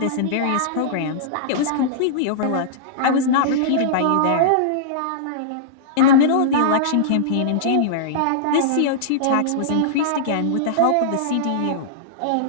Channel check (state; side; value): different; both; correlation -0.02